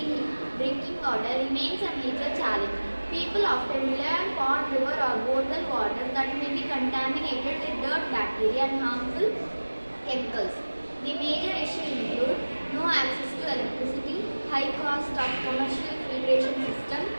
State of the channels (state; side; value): inverted; both; correlation -1.00